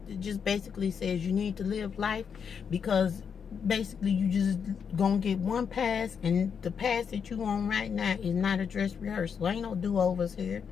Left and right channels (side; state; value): right; quieter; 6.8 dB